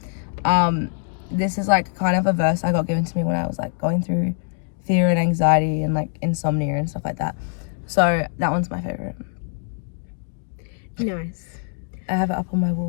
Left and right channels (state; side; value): silent; right; 56 dB below the other